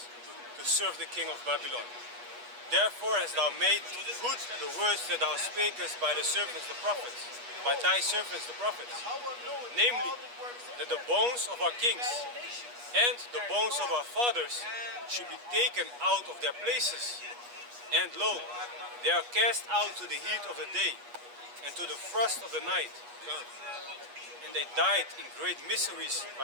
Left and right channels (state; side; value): late; left; 8.3 ms